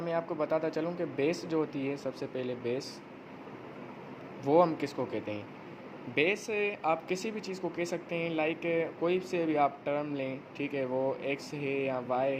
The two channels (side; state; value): both; identical; correlation 1.00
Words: मैं आपको बताता चलूँ कि बेस जो होती है, सबसे पहले बेस वो हम किसको कहते हैं। बेस आप किसी भी चीज़ को कह सकते हैं, लाइक कोई से भी आप टर्म लें, ठीक है, वो एक्स है या वाई